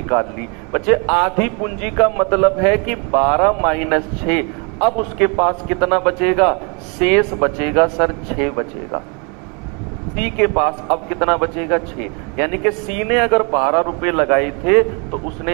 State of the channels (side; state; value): left; quieter; 34.0 dB